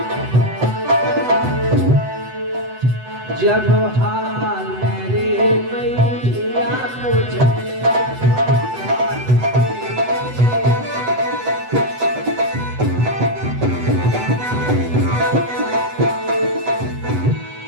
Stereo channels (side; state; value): left; late; 8.0 ms